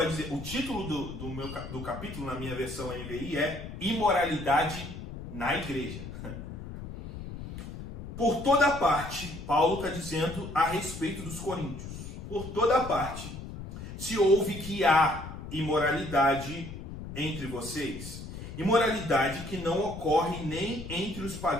dizer, o título do capítulo, na minha versão NVI, é Imoralidade na Igreja. Por toda parte, Paulo está dizendo a respeito dos coríntios, por toda parte se ouve que há imoralidade entre vocês, imoralidade que não ocorre nem entre os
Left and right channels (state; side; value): noise; left; rumble, 10 dB below the sound